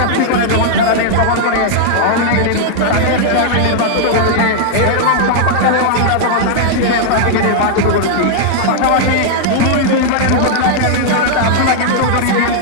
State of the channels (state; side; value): different; both; correlation -0.01